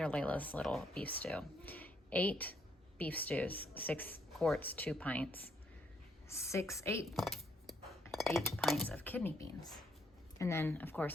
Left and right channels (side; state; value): both; normal; correlation 0.72